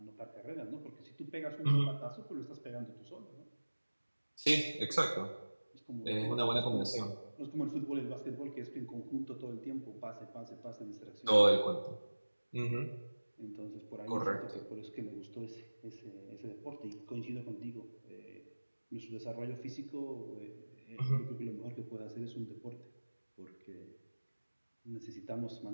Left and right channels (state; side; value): inverted; both; correlation -1.00